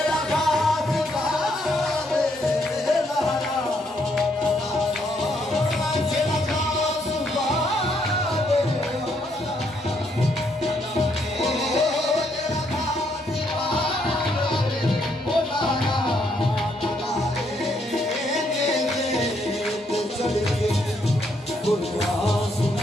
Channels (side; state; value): both; normal; correlation 0.73